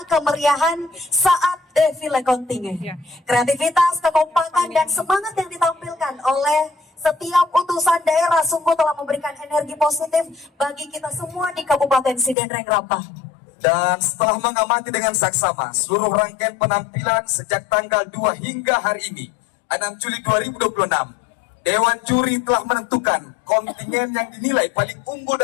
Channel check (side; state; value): right; drops out; at 12.4 s